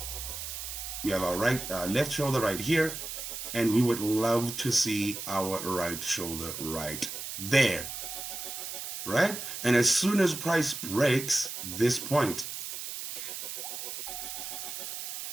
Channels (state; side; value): noise; right; hiss, 7 dB below the sound